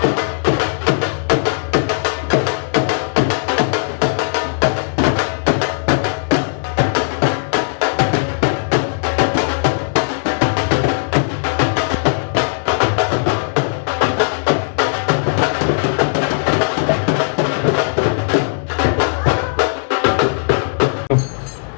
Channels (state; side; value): silent; right; digital silence